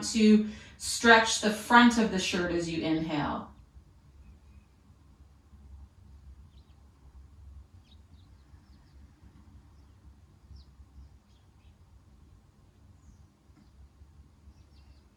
to stretch the front of the shirt as you inhale.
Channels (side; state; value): both; identical; correlation 1.00